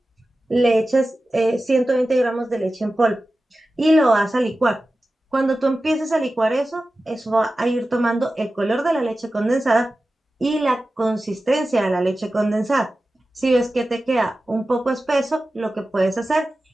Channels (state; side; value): normal; both; correlation 0.94